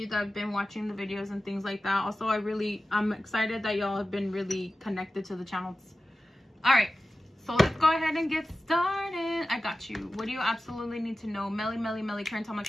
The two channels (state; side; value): normal; both; correlation 0.94